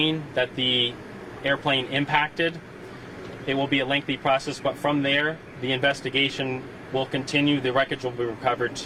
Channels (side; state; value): both; identical; correlation 1.00